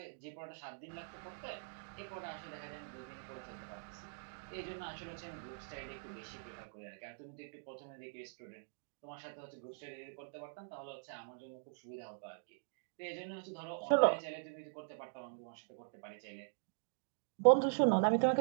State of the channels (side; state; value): left; silent; digital silence